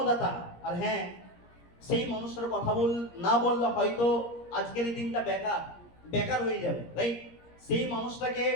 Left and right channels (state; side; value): late; right; 17 ms